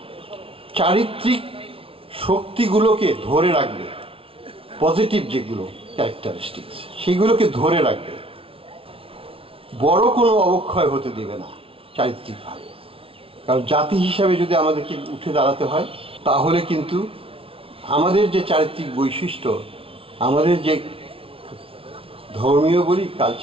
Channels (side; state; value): left; late; 0.26 ms